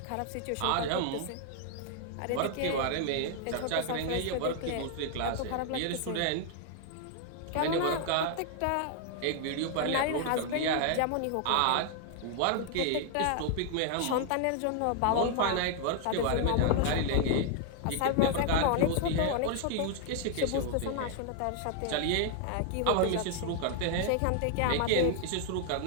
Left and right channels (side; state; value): both; different; correlation 0.00